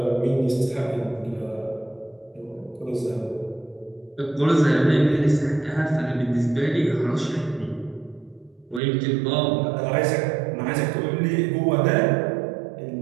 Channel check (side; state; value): left; drops out; at 8.8 s